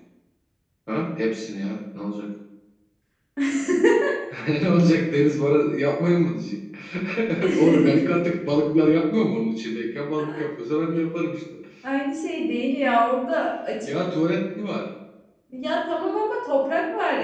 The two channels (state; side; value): identical; both; correlation 1.00